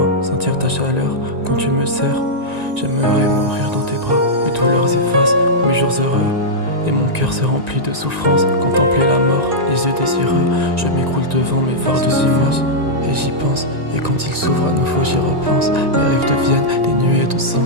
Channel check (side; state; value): left; late; 1.9 ms